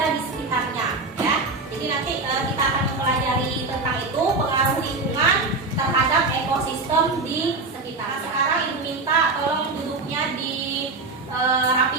di sekitarnya ya. Jadi nanti kita akan mempelajari tentang itu, pengaruh lingkungan terhadap ekosistem di sekitar. Nah, sekarang Ibu minta tolong duduknya dirapikan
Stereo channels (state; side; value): quieter; left; 3.6 dB